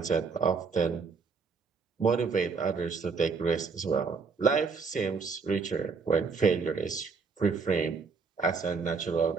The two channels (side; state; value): left; quieter; 5.0 dB